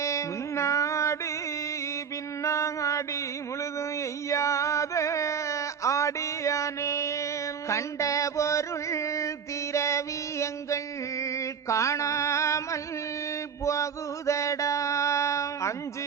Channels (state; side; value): quieter; left; 7.0 dB